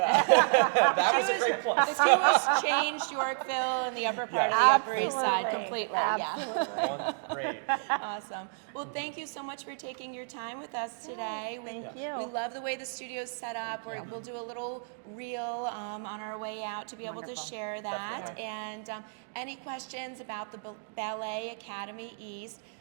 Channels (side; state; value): left; silent; digital silence